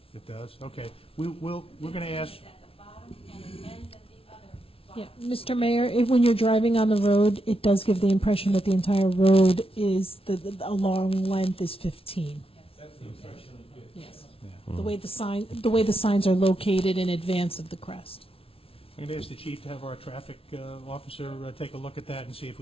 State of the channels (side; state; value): right; late; 0.27 ms